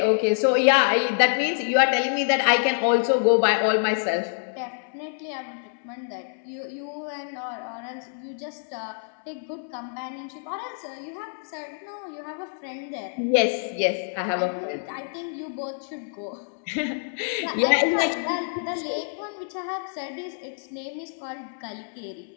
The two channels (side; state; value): right; silent; 61 dB below the other